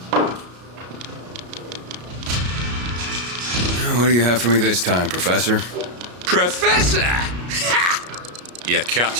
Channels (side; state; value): left; late; 33 ms